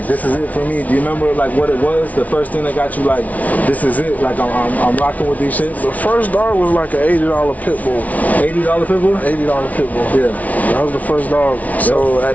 this is it for me. Do you remember like what it was? The first thing that got you like, this is it. Like, I'm rocking with these shits. The first dog was like an $80 pit bull. $80 pit bull? $80 pit bull. Yeah. That was the first dog. So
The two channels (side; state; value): right; late; 0.071 ms